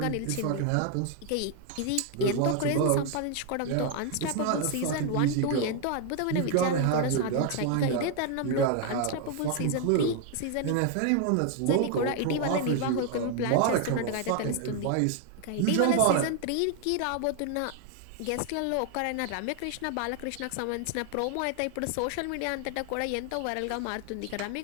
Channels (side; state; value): both; different; correlation 0.00